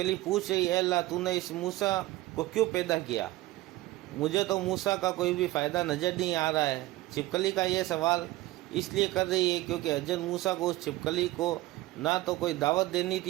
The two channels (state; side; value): quieter; left; 18.0 dB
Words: पूछ रही है, अल्लाह तूने इस मूसा को क्यों पैदा किया? मुझे तो मूसा का कोई भी फ़ायदा नज़र नहीं आ रहा है। छिपकली का ये सवाल इसलिए कर रही है क्योंकि हज़रत मूसा को उस छिपकली को ना तो कोई दावत देनी